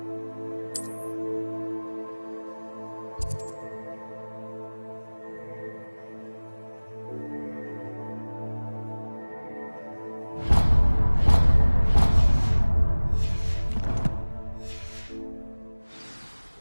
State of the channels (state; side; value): inverted; both; correlation -1.00